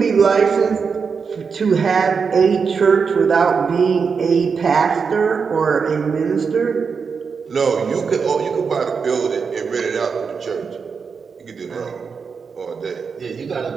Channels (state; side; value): quieter; left; 5.6 dB